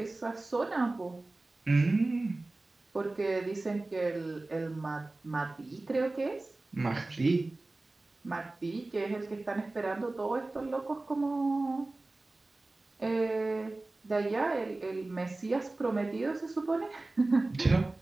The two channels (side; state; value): left; quieter; 3.1 dB